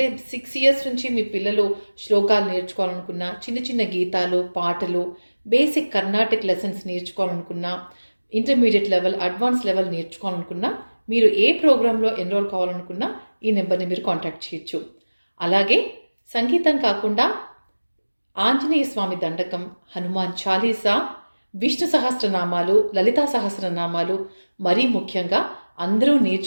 6 years నుంచి మీ పిల్లలు శ్లోకాలు నేర్చుకోవాలనుకున్నా, చిన్న చిన్న గీతాలు, పాటలు, బేసిక్ కర్ణాటిక్ లెసన్స్ నేర్చుకోవాలనుకున్నా, ఇంటర్మీడియట్ లెవెల్, అడ్వాన్స్ లెవెల్ నేర్చుకోవాలనుకున్నా, మీరు ఏ ప్రోగ్రాంలో ఎన్రోల్ కావాలనుకున్నా ఈ నెంబర్ని మీరు కాంటాక్ట్ చేయొచ్చు. అలాగే సంగీతం కాకుండా ఆంజనేయ స్వామి దండకం, హనుమాన్ చాలీసా, విష్ణు సహస్రనామాలు, లలితా సహస్రనామాలు, మరీ ముఖ్యంగా అందరూ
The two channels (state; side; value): inverted; both; correlation -1.00